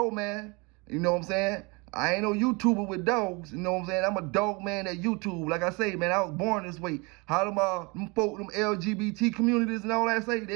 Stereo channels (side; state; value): left; quieter; 28.3 dB